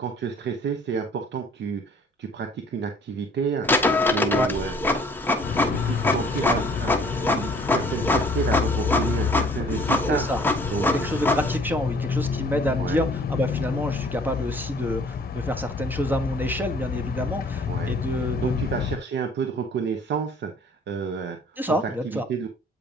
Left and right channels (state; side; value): normal; both; correlation 0.55